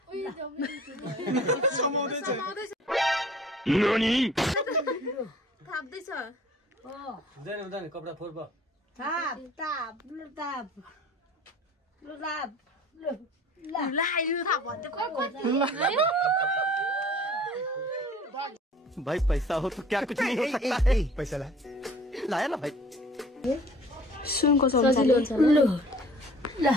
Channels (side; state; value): both; normal; correlation 0.49